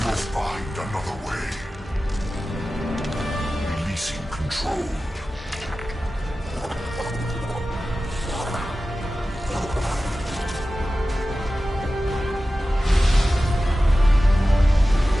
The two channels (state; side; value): normal; both; correlation 0.95